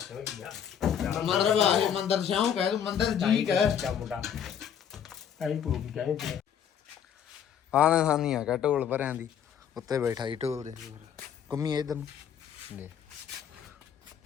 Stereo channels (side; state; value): right; quieter; 8.6 dB